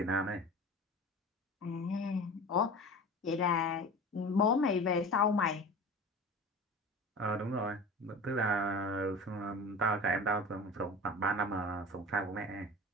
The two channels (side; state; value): both; normal; correlation 0.35